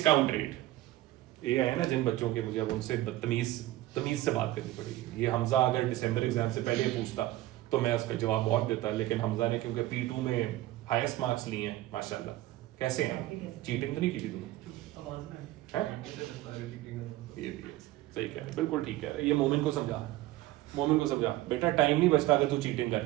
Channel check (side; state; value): left; quieter; 16.4 dB